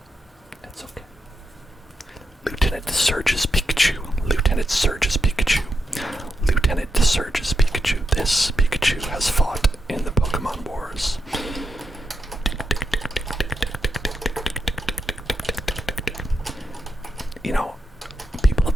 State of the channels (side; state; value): both; normal; correlation 0.85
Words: that's okay. Lieutenant Surge's Pikachu. This Pikachu has fought in the Pokemon Wars. You know, people